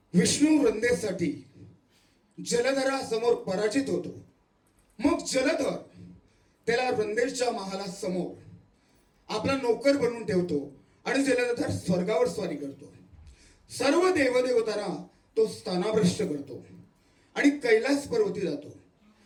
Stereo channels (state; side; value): identical; both; correlation 1.00